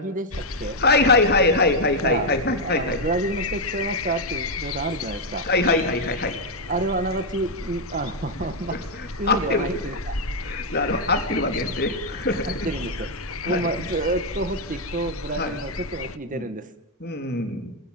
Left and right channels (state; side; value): normal; both; correlation 0.01